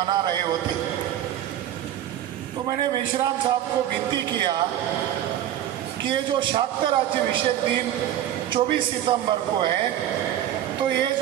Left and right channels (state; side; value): quieter; left; 11.6 dB